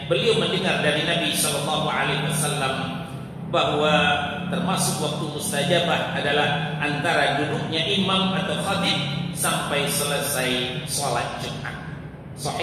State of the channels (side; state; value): both; identical; correlation 1.00